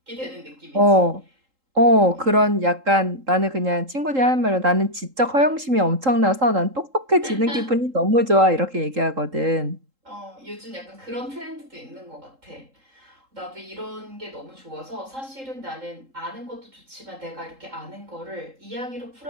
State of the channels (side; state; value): left; late; 3.8 ms